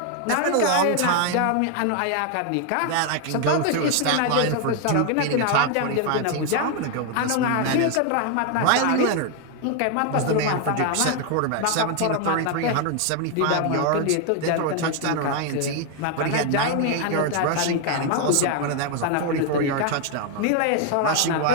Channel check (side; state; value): both; different; correlation 0.01